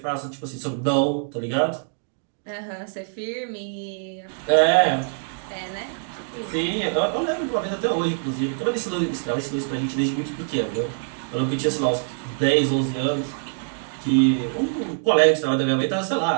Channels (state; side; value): silent; left; digital silence